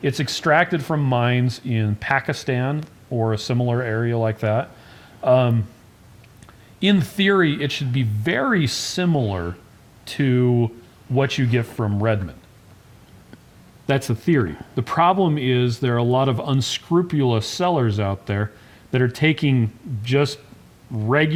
it's extracted from mines in Pakistan or a similar area like that. In theory, it should be very similar to what you get from Redmond. That's the theory. The problem is there are a lot of unscrupulous sellers out there that are taking just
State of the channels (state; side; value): identical; both; correlation 1.00